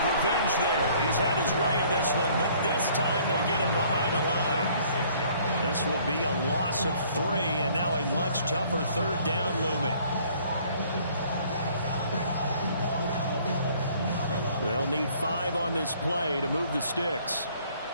revenge there. He's had his way in this one, but this time they get him behind the line. This will be a loss of 3, and now a much tougher 3rd down looming. They'll need 5 on this play to move the sticks.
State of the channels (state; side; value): inverted; both; correlation -0.58